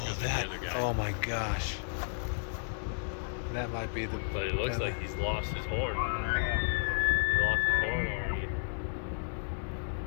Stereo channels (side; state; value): right; silent; 56 dB below the other